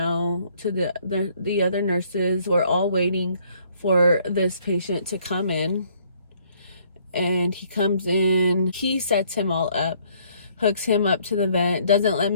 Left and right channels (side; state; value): both; inverted; correlation -0.64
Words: to the other nurses. We're all waiting for this patient to come in. And he comes in, he sets him all up, hooks him up to the vent, doesn't let